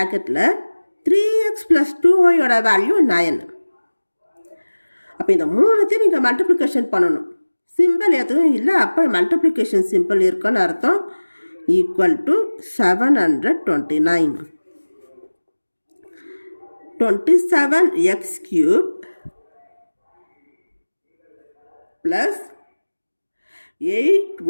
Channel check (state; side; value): inverted; both; correlation -1.00